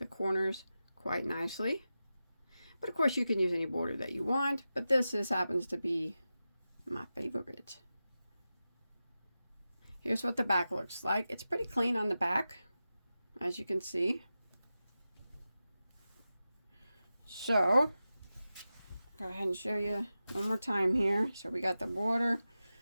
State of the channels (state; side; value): inverted; both; correlation -0.93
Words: corners quite nicely. But of course you can use any border that you want, but this happens to be my favorite. Here's what the back looks like. It's pretty clean on the back, as you can see. So, go ahead and show you one more time here. So we got the border,